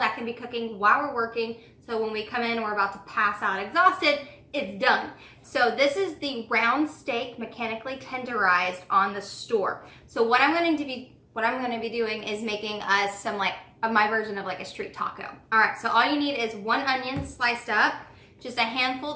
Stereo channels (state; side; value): identical; both; correlation 1.00